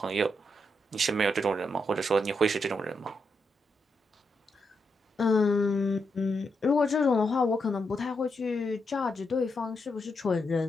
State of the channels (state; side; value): normal; both; correlation 0.82